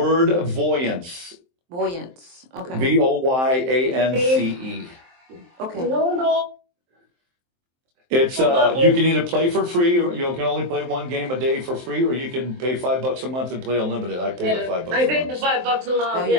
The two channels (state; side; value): late; left; 23 ms